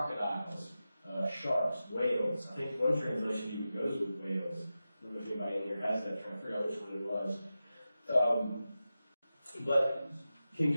sharks, whales. I think one translation even goes with whales. I don't know if anybody in here has that. I'm trying to figure out which one it was. But King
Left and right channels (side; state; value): both; inverted; correlation -0.93